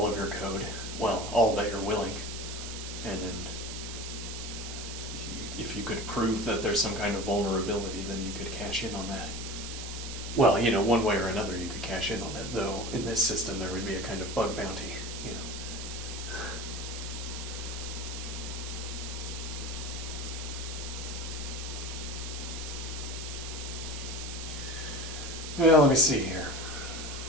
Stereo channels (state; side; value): noise; right; hiss, 8 dB below the sound